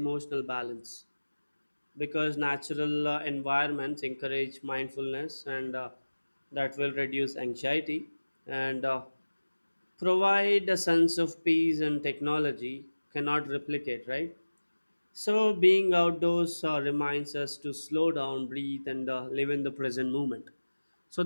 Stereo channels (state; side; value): inverted; both; correlation -1.00